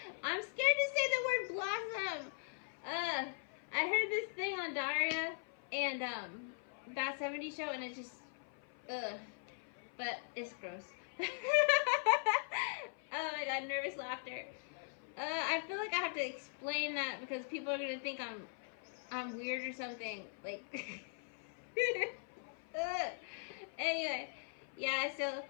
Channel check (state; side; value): silent; right; 51 dB below the other